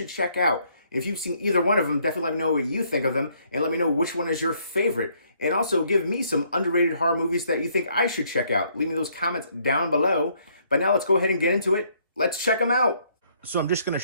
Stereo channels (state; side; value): inverted; both; correlation -0.68